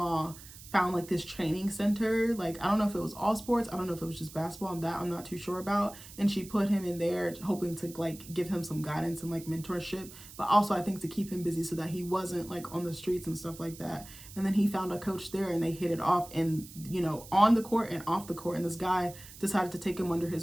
found like this training center. Like, I don't know if it was all sports, I don't know if it was just basketball, and that I'm not too sure about. And she put him in there hoping to like give him some guidance and like mentorship, but also I think to keep him busy so that he wasn't like on the streets and stuff like that. And then he found a coach there and they hit it off, and you know, on the court and off the court. And this guy decided to take him under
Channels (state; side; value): noise; right; hiss, 17 dB below the sound